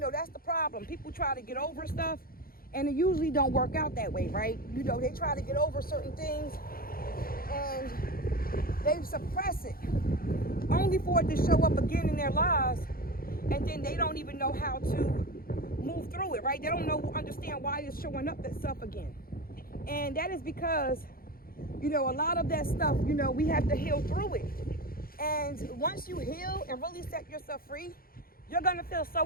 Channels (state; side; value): late; right; 0.42 ms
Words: that's the problem. People try to get over stuff and it usually don't work out that way, right? You know, they try to get over certain things and they suppress it only for it to show up again in their lives, and then they don't even know how to move through it, right? They don't understand why it's showing up itself again. And that is because, you know, a lot of that stuff, you know, we have to heal through it. And once you heal and really set yourself free, you're going to feel